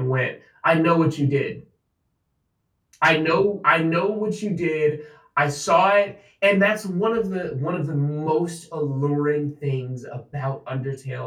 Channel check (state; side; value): identical; both; correlation 1.00